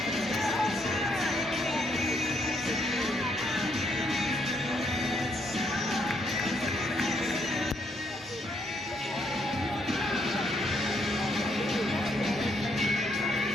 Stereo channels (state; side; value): normal; both; correlation 0.73